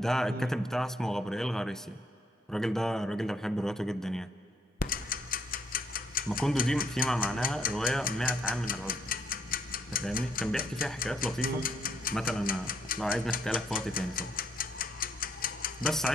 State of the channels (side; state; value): both; normal; correlation 0.71